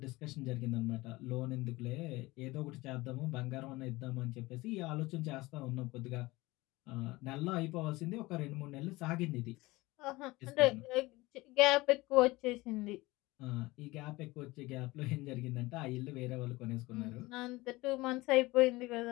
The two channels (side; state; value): right; quieter; 20.8 dB